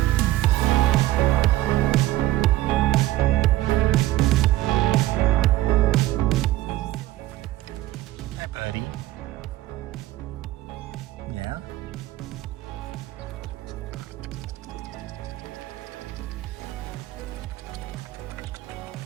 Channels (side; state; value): left; quieter; 16.0 dB